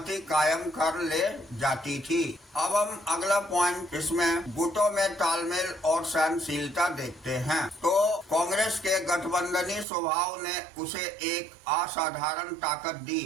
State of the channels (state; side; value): drops out; left; at 9.9 s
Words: कायम कर ले जाती थी। अब हम अगला पॉइंट इसमें गुटों में तालमेल और सहनशीलता देखते हैं। तो कांग्रेस के गठबंधनी स्वभाव ने उसे एक असाधारण ताकत दी।